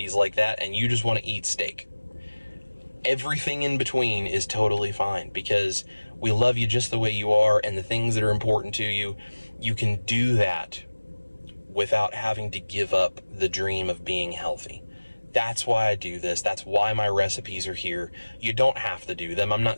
like that and you just want to eat steak. Everything in between is totally fine, because we love you just the way you are, and the things that are important to you, you can do that without having to give up the dream of being healthy. That's why I do this. That's why my recipes are here. You don't have to do them. I'm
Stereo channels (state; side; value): inverted; both; correlation -1.00